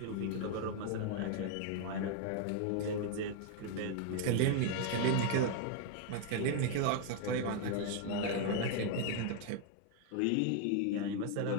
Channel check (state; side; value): different; both; correlation 0.00